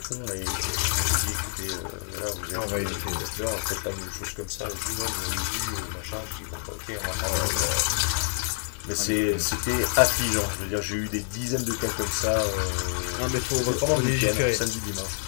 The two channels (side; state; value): right; silent; 60 dB below the other